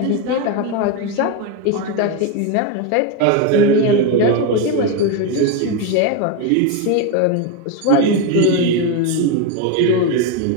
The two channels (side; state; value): both; different; correlation 0.02